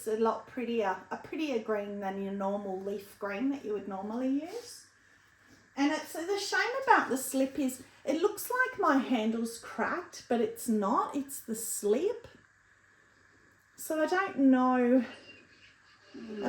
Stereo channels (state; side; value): identical; both; correlation 1.00